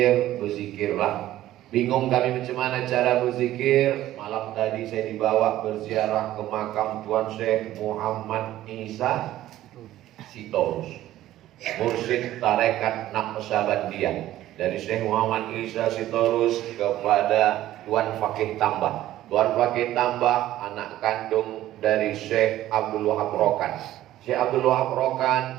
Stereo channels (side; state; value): left; quieter; 14.1 dB